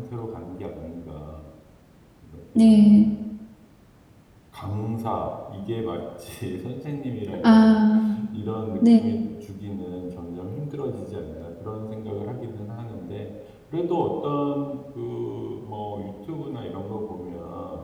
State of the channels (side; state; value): both; identical; correlation 1.00